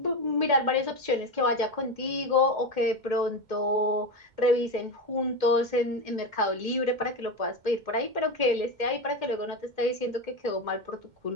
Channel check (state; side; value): late; left; 2.1 ms